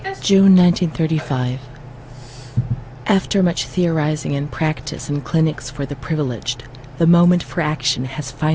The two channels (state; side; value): identical; both; correlation 1.00